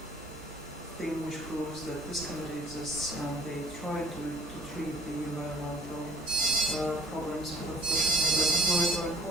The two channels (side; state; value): both; normal; correlation 0.55